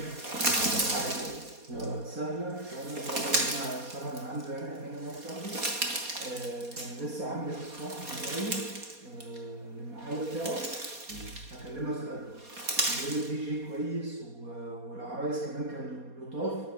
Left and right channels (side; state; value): left; late; 4.2 ms